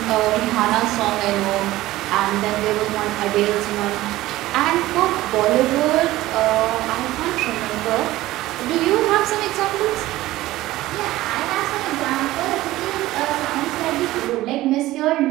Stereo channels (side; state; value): left; quieter; 16.7 dB